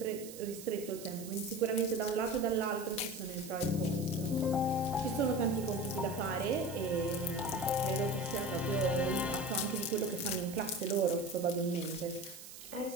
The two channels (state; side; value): noise; right; hiss, 14 dB below the sound